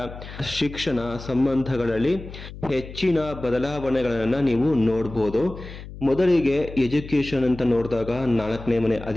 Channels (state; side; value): noise; left; hum, 13 dB below the sound